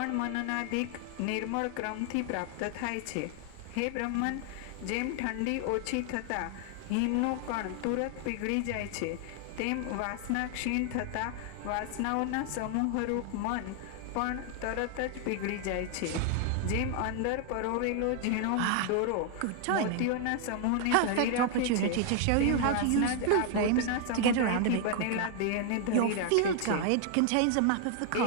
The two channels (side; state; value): both; different; correlation 0.00